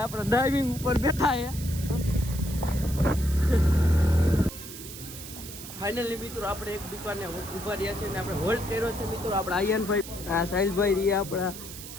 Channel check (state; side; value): noise; right; hiss, 12 dB below the sound